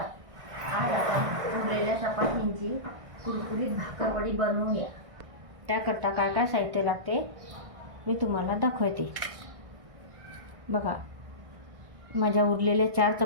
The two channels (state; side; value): late; left; 1.6 ms